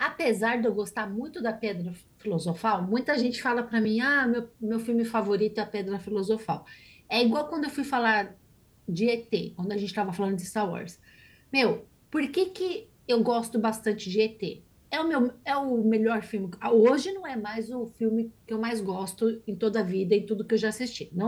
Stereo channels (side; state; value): both; identical; correlation 1.00